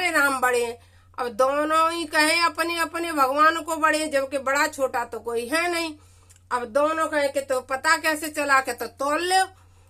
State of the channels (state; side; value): identical; both; correlation 1.00